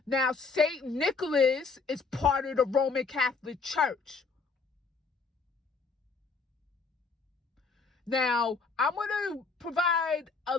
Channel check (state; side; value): quieter; right; 4.5 dB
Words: Now, St. Nicholas is part of the Roman Catholic Church. Now, I'm going to provide